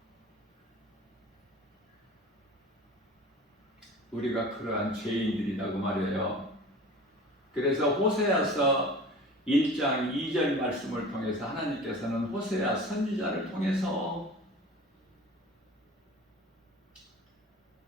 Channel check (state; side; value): normal; both; correlation 0.39